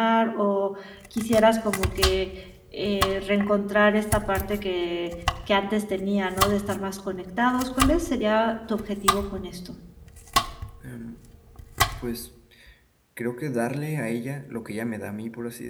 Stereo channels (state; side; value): identical; both; correlation 1.00